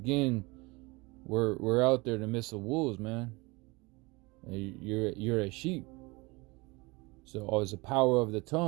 we're out there in the midst of wolves, man. And you're a sheep. So it's the power of the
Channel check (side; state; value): left; quieter; 24.9 dB